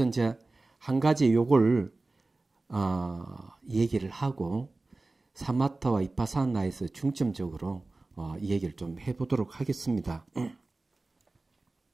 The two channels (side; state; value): left; quieter; 3.2 dB